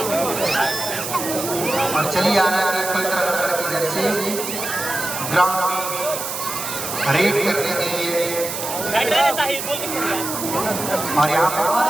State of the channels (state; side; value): noise; right; hiss, 5 dB below the sound